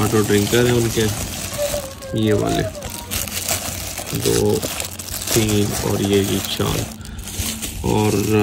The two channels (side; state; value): both; identical; correlation 1.00